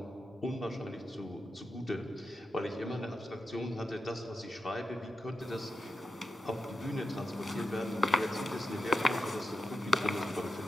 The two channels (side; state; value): both; normal; correlation 0.89